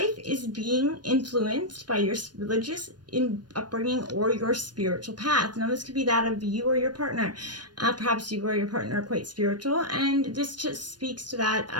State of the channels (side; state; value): left; late; 0.70 ms